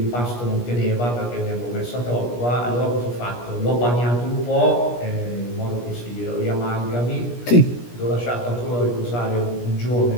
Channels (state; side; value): late; right; 17 ms